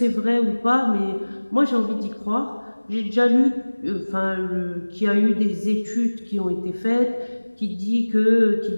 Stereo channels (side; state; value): both; inverted; correlation -1.00